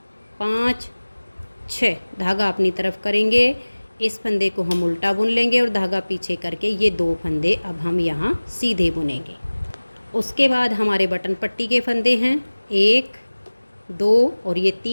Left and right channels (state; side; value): inverted; both; correlation -1.00